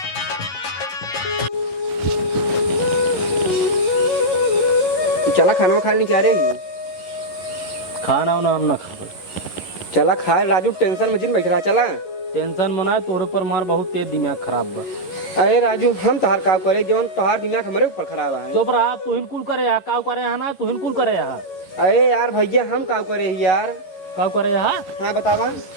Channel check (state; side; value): late; right; 11 ms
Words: चला खाना खा लेने क्या रही खाना वाना हम ना खा चला खा राजू टेंशन में जिन बैठ रहा चला टेंशन मना तोरे पर मार बहुत तेज दिमाग खराब बा। अरे राजू हम तोहार काम करे जवन तोहार दिमाग हमारे ऊपर खराब है। चुप रहा तू हिनकुल करे यहाँ काव करे यहाँ ना तू हिनकुल करे यहाँ अरे यार भैया हम काम करे ही यार। काव करे यहाँ। हाँ बतावा।